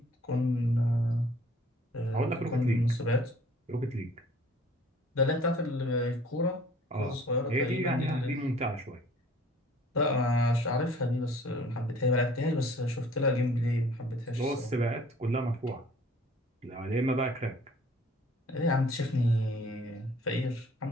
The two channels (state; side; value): normal; both; correlation 0.53